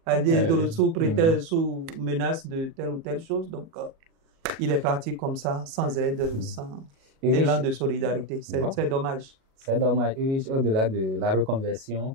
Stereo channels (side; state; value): left; late; 37 ms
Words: aller sous menace de telle ou telle chose. Donc, il est parti comme ça, sans aide, sans élan de solidarité. C'est dommage. C'est dommage. Au-delà de la reconversion